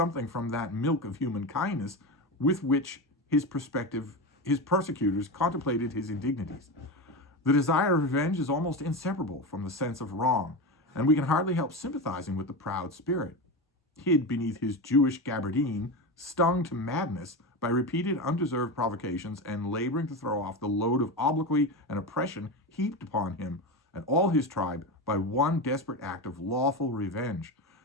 from that milk of human kindness with which his persecutors contemplated his indignities. The desire of revenge is almost inseparable from the sense of wrong, and we can hardly help sympathizing with the proud spirit. Hid beneath his Jewish gabardine, stung to madness by repeated undeserved provocations, and laboring to throw off the load of obloquy and oppression heaped upon him and all his tribe by one desperate act of lawful revenge,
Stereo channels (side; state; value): both; normal; correlation 0.20